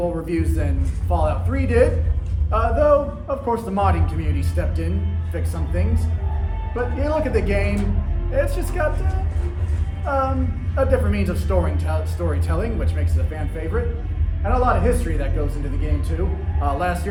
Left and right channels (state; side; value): identical; both; correlation 1.00